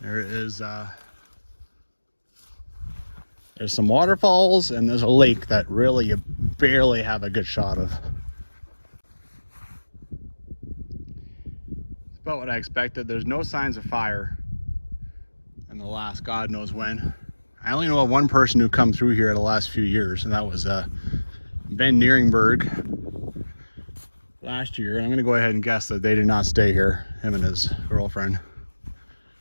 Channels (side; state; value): both; inverted; correlation -1.00